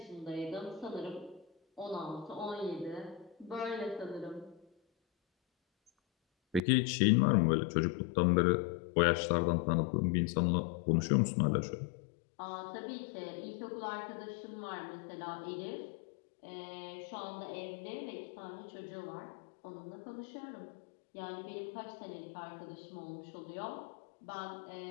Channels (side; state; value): right; drops out; at 6.6 s